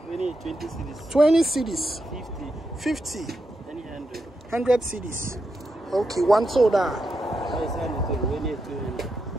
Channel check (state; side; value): normal; both; correlation 0.85